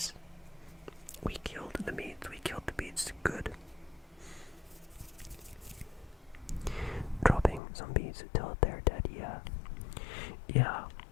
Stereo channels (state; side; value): drops out; right; at 7.6 s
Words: We killed the beats good. Dropping some beats till they're dead, yeah.